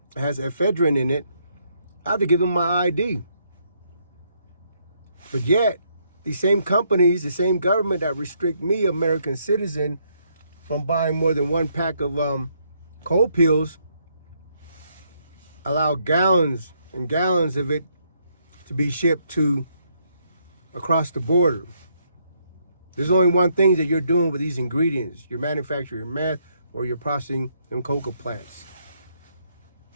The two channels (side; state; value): both; inverted; correlation -0.73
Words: has ephedrine in it, I have to give them my ID. But yet, these same companies, the same government that restrict me, American citizen, from buying more than one pack of cold pills, allow gallons and gallons of it to be shipped to across the border. There's only one thing that you're doing with these ingredients. You're manufacturing meth or you're processing them coca plants.